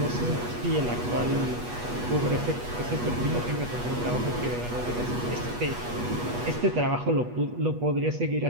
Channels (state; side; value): late; left; 8.3 ms